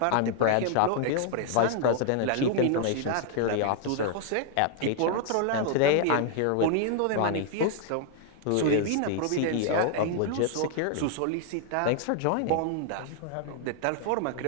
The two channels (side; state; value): both; different; correlation 0.00